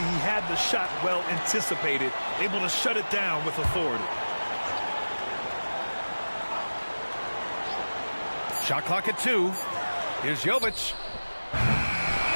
had the shot well anticipated, able to shut it down with authority. Shot clock at 2. Here's Jovic.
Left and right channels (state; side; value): inverted; both; correlation -1.00